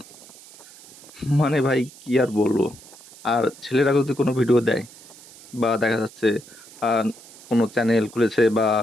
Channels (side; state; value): right; noise; hiss, 21 dB below the sound